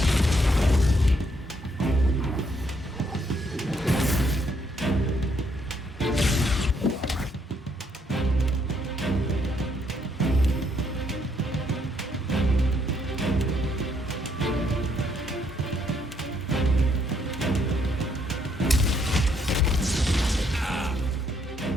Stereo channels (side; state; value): both; normal; correlation 0.71